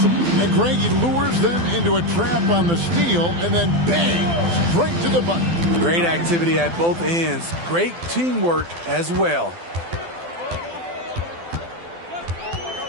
And Greg, he lures them into a trap on the steal, and then bang, straight to the button. Great activity at both ends. Great teamwork as well.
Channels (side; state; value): left; late; 12 ms